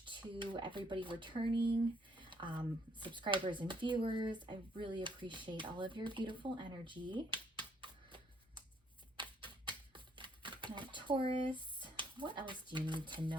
to everybody returning, subscribers and viewers. I really appreciate all of your beautiful energy. Now, Taurus, what else do you need to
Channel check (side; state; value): both; normal; correlation 0.68